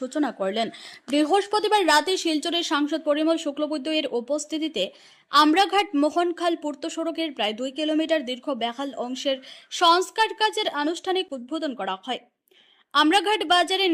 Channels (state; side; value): identical; both; correlation 1.00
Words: করলেন। বৃহস্পতিবার রাতে শিলচরের সাংসদ পরিমল শুক্লবৈদ্য এর উপস্থিতিতে আমরাঘাট মোহনখাল পূর্ত সড়কের প্রায় 2 কিলোমিটার দীর্ঘ বেহাল অংশের সংস্কার কাজের আনুষ্ঠানিক উদ্বোধন করা হয়। আমরাঘাট বাজারে